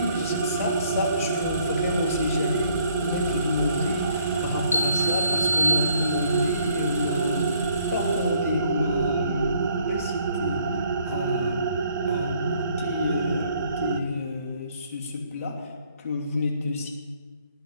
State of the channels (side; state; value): both; inverted; correlation -0.64